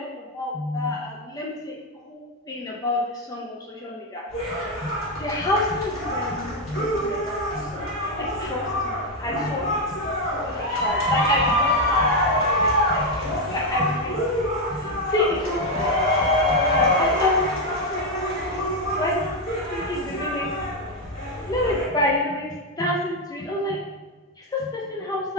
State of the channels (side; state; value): both; normal; correlation 0.06